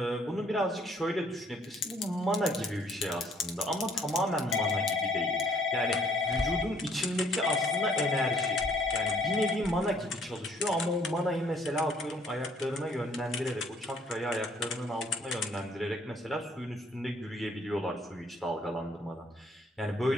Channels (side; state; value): both; normal; correlation 0.62